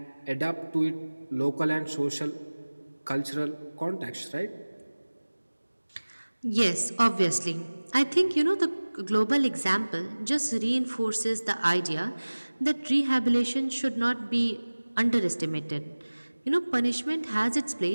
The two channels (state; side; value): inverted; both; correlation -1.00